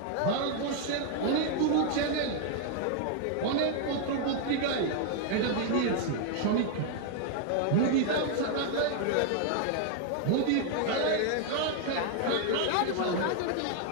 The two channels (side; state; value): both; different; correlation 0.00